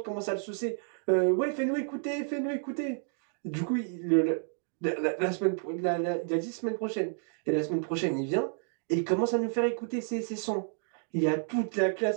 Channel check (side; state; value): left; silent; 57 dB below the other